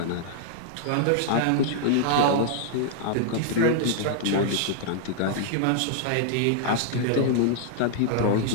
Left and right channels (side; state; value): both; different; correlation -0.01